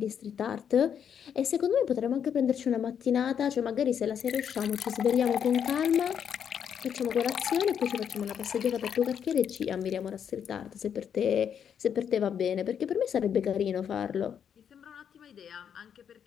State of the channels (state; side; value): quieter; right; 8.2 dB